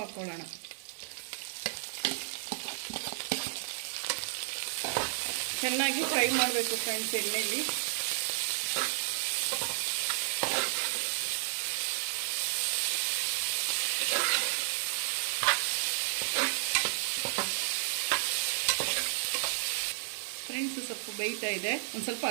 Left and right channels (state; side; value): silent; left; digital silence